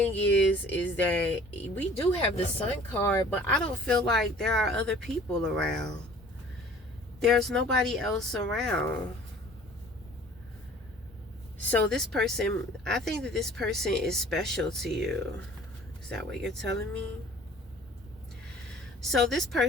is that we do have the Sun card, but I don't feel like there are other people around. There's nobody else around. So this person, I think that this person is special to you. Is that what you're telling me? So this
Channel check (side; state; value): both; normal; correlation 0.50